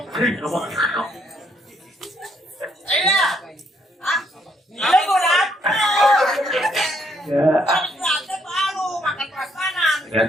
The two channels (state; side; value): normal; both; correlation 0.71